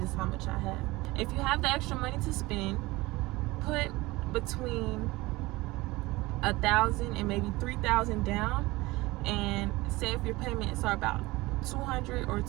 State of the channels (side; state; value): left; quieter; 20.9 dB